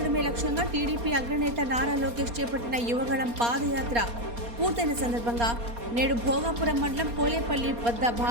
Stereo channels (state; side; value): late; left; 4.3 ms